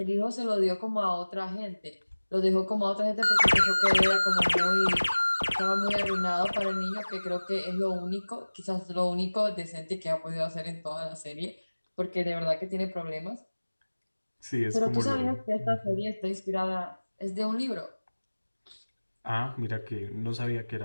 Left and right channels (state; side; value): inverted; both; correlation -1.00